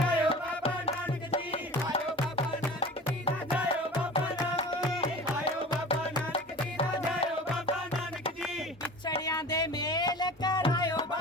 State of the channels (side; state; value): both; normal; correlation 0.38